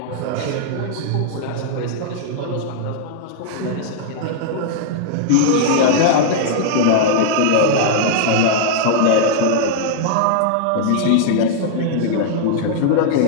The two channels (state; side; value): different; both; correlation -0.01